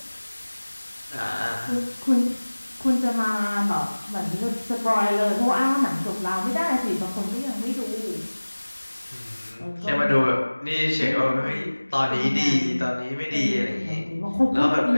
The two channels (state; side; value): inverted; both; correlation -1.00